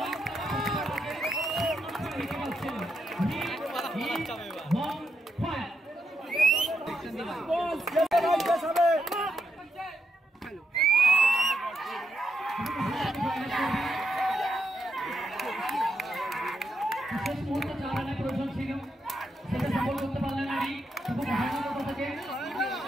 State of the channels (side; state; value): both; normal; correlation 0.81